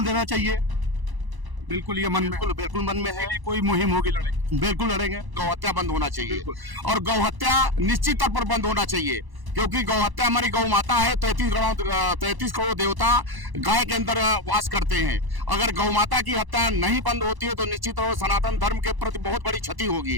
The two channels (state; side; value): late; left; 1.0 ms